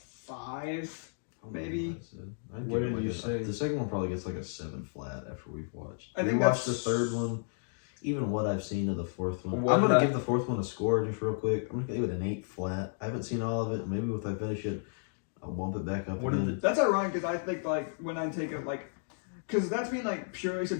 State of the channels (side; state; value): right; silent; digital silence